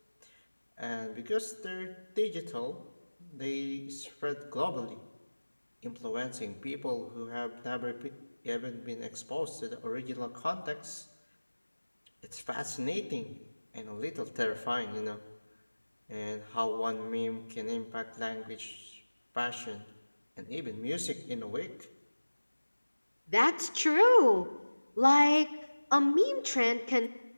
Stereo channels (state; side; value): inverted; both; correlation -1.00